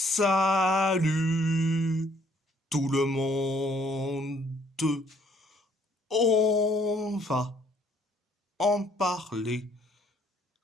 Salut tout le monde. On va en parler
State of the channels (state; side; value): normal; both; correlation 0.64